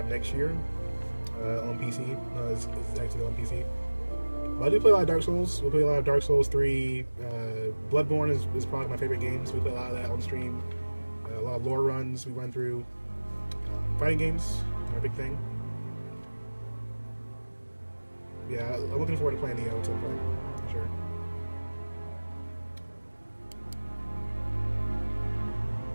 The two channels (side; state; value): both; inverted; correlation -1.00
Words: next year on PC. It's actually on PC. But I do play a lot of Dark Souls. We play a lot of Dark Souls 3. Bloodborne is probably my favorite game, so we play a lot of that on stream. A lot of lore runs we run through. Fighting games are a big thing. Yeah, I'm looking forward to playing Neo at some point, for sure.